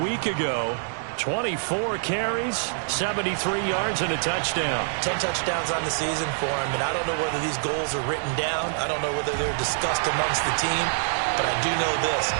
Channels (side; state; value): left; silent; 58 dB below the other